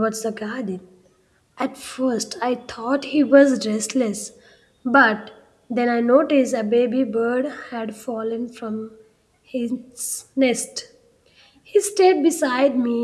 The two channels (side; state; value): both; identical; correlation 1.00